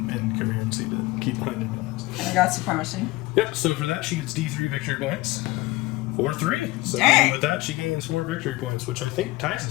in coherency to keep behind enemy lines. And I got supremacy. Yep, so for that, she gets D3 victory points. 4, 3. So Dang. with that, she gains 4 victory points, which I think ties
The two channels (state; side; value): quieter; right; 20.7 dB